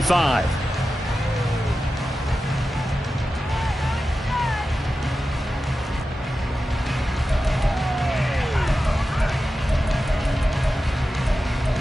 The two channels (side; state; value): both; normal; correlation 0.93